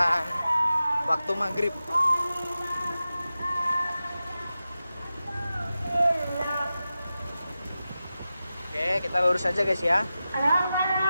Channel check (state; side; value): inverted; both; correlation -0.93